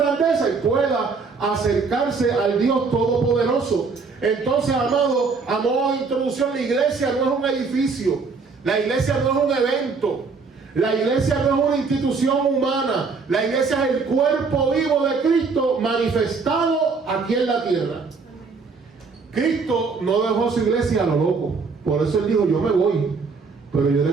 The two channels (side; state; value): left; quieter; 4.7 dB